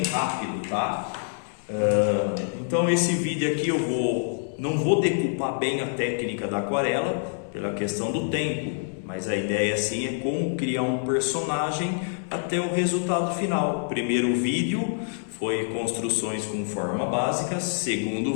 rápido, tá? Então esse vídeo aqui não vou decupar bem a técnica da aquarela pela questão do tempo, mas a ideia sim é como criar um personagem até o resultado final. Primeiro vídeo foi construções com forma básica, segundo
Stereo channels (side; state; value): right; silent; 61 dB below the other